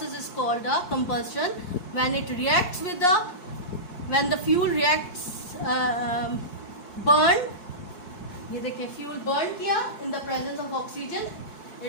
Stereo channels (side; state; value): right; late; 4.6 ms